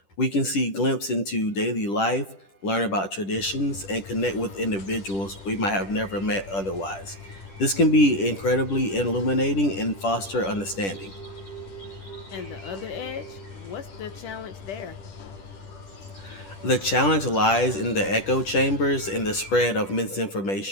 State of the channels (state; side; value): late; right; 10 ms